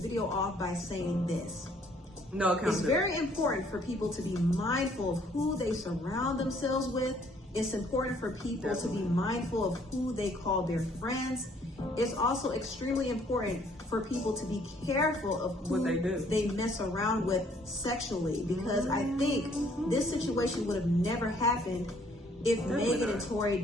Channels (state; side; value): normal; both; correlation 0.63